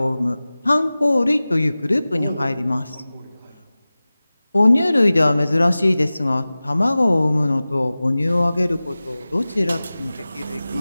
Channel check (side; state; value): both; inverted; correlation -0.97